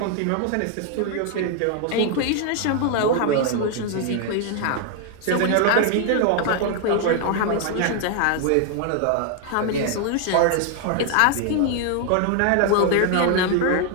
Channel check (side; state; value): both; different; correlation 0.00